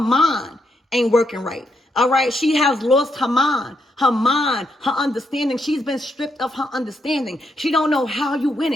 ain't working right. All right, she has lost her mind, her understanding. She's been stripped of her understanding. She don't know how you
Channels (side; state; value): both; normal; correlation 0.79